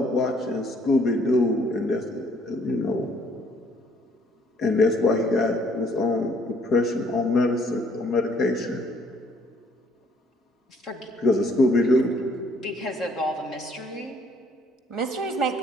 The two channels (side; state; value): both; normal; correlation 0.63